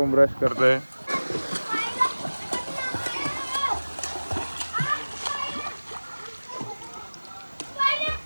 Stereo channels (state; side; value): inverted; both; correlation -1.00